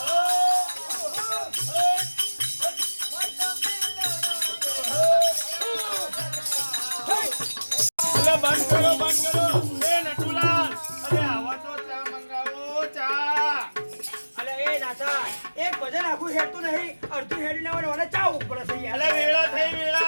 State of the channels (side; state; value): both; inverted; correlation -1.00